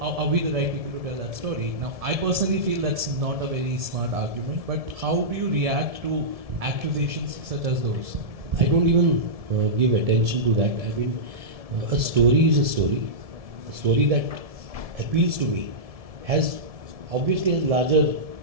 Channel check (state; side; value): late; left; 1.7 ms